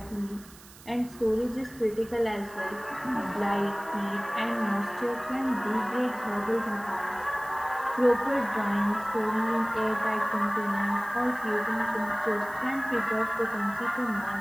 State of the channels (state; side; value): noise; right; hiss, 21 dB below the sound